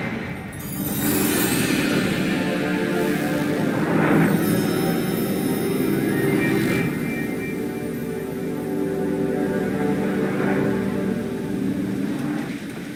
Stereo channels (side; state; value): both; identical; correlation 1.00